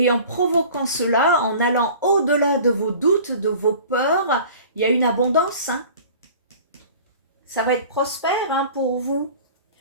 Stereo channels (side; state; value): both; inverted; correlation -0.43